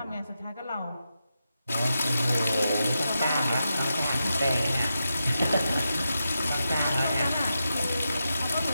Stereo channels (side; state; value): both; inverted; correlation -0.88